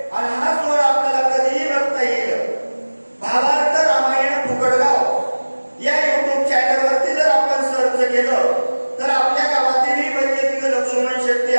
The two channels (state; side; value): inverted; both; correlation -1.00